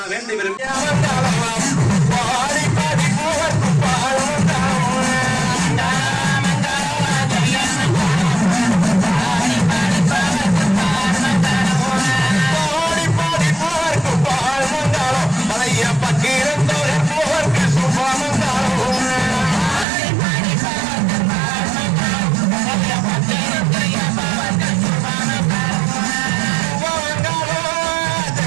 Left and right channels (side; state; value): left; drops out; at 19.9 s